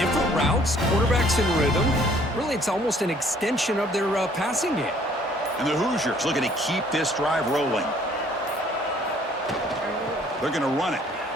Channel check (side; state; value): both; normal; correlation 0.59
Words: routes, quarterbacks in rhythm. Really, it's almost an extension of their passing game. And the Hoosiers looking to keep this drive rolling. They're going to run it.